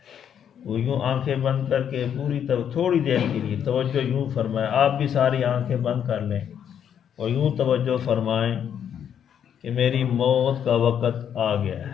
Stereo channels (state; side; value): quieter; right; 8.8 dB